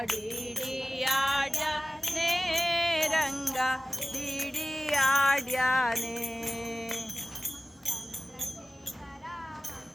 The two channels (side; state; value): both; normal; correlation 0.97